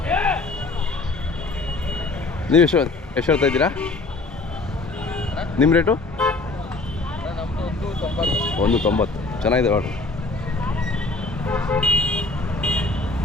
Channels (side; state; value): right; quieter; 3.4 dB